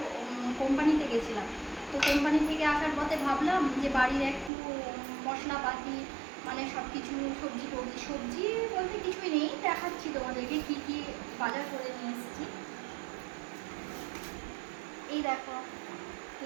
কোম্পানিতে গেছিলাম। তো কোম্পানি থেকে আসার পথে ভাবলাম যে বাড়ির একটু মশলাপাতি মানে সব কিছু সবজি বলতে কিছুই নেই, দেখাচ্ছি তোমাদেরকে কি কি বাজার করে নিয়ে এসেছি। এই দেখো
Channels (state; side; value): drops out; left; at 4.5 s